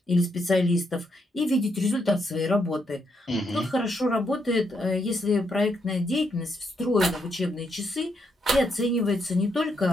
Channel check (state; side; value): normal; both; correlation 0.78